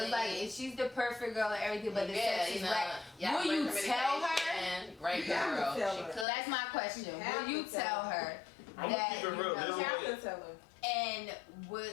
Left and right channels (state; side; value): drops out; right; at 6.2 s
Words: like family. if she's the perfect girl and everything, but the Yeah, sex you is know, whack. y'all Will you great tell her? communication, Great You have to girl. tell She her. could. That's my question. You have Will you to tell tell her I'm that gonna keep it you real. know, There's you a have way. to tell her.